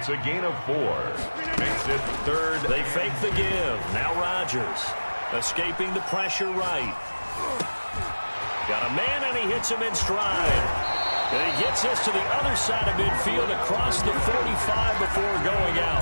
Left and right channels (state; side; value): inverted; both; correlation -1.00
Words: a gain of 4. Makes it third. They fake the give. Now Rodgers escaping the pressure right. Got a man, and he hits him in stride. And he gets this to the other side of midfield across the 45 before going